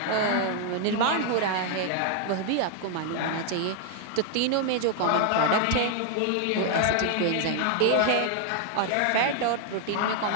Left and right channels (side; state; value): both; different; correlation 0.00